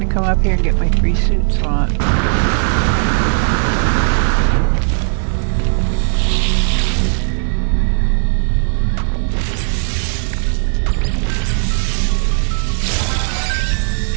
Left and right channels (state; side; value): silent; left; digital silence